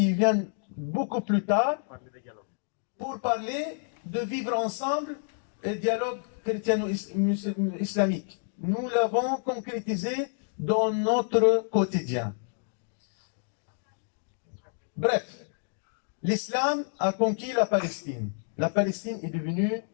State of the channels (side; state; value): right; silent; digital silence